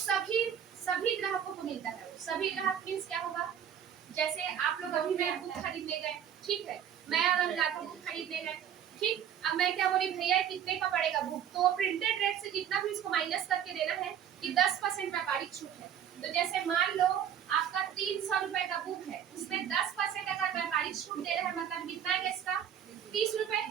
ग्राहकों को मिलता है। सभी ग्राहक मीन्स क्या होगा, जैसे आप लोग अभी मैं बुक खरीदने गए, ठीक है, मैं अगर जाता हूँ बुक खरीदने गए, ठीक, अब मैं क्या बोली, भैया कितने का पड़ेगा बुक, तो प्रिंटेड रेट से जितना भी इसको माइनस करके देना है कि 10% व्यापारिक छूट है। तो जैसे मान लो आपका 300 रुपए का बुक है, उसमें 10% अगर व्यापारिक छूट दे रहे हैं, मतलब कितना है इसका 30 रुपए,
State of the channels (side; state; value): left; quieter; 9.1 dB